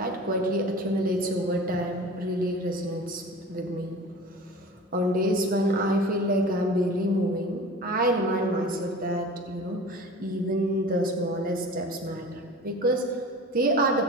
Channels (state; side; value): normal; both; correlation 0.38